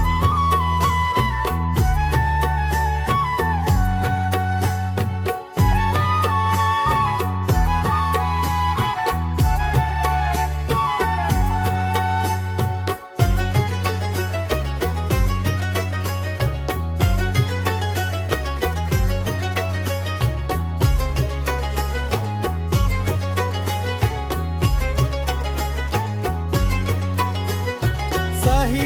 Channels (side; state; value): both; identical; correlation 1.00